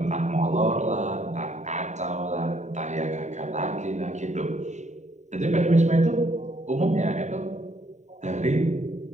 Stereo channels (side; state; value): left; late; 0.34 ms